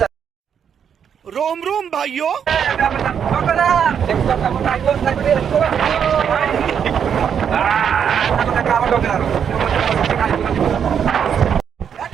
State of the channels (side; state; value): left; quieter; 7.9 dB